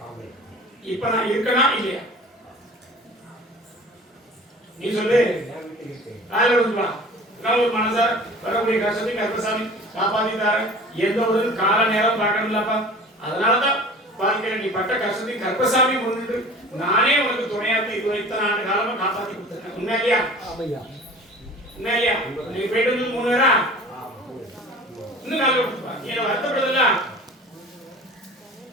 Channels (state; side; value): normal; both; correlation 0.42